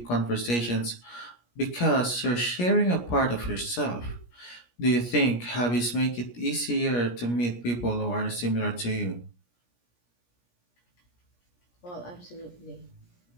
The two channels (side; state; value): right; late; 17 ms